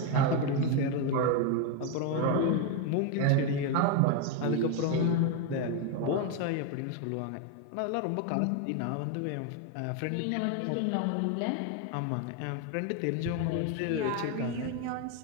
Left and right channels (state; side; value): different; both; correlation 0.01